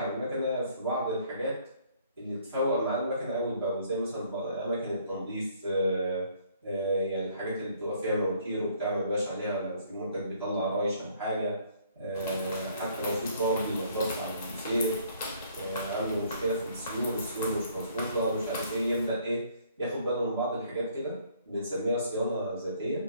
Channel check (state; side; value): inverted; both; correlation -0.62